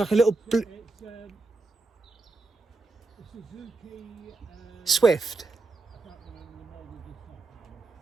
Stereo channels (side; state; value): left; quieter; 3.4 dB